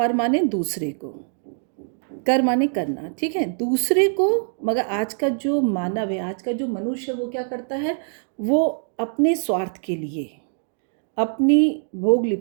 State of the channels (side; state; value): left; silent; digital silence